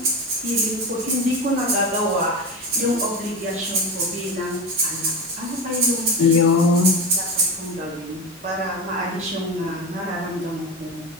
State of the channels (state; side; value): normal; both; correlation 0.23